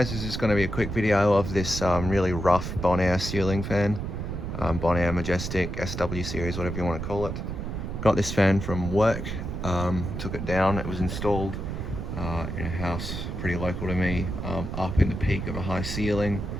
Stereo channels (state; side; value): noise; right; rumble, 5 dB below the sound